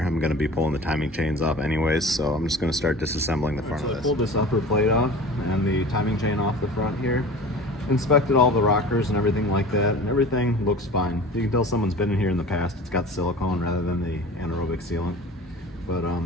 I'm gonna be pulling the timing chains off anyways. So I'm just gonna start disassembling the front of this. I pulled this upper plate off and the timing chain off the front here. Inspected all the rockers and everything like that, and everything looks fine. You can tell someone's been in here in the past. It's got silicone rather than the anaerobic sealant. But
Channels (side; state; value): both; normal; correlation 0.39